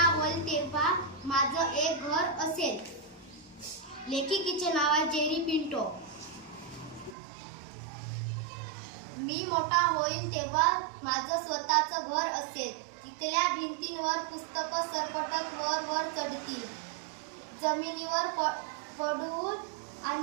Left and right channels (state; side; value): drops out; left; at 7.2 s